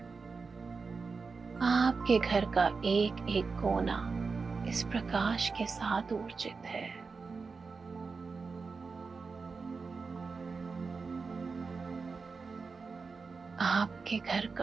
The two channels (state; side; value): quieter; left; 4.6 dB